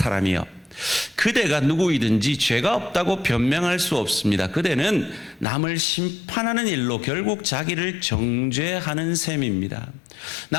그대가 누구이든지 죄가 없다고 변명할 수 없습니다. 그대는 남을 심판하는 일로 결국 자기를 정죄하는 셈입니다.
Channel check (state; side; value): drops out; right; at 5.5 s